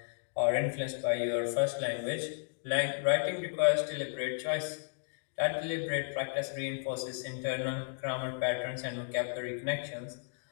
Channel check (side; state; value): right; silent; digital silence